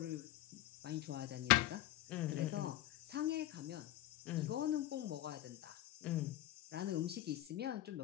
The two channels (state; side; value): quieter; right; 14.8 dB